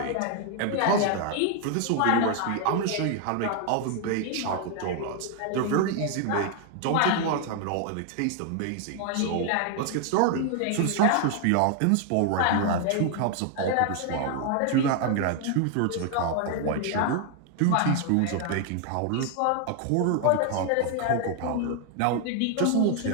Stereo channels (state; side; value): different; both; correlation 0.00